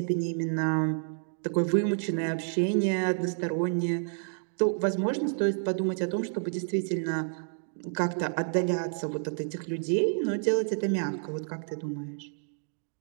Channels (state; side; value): silent; left; digital silence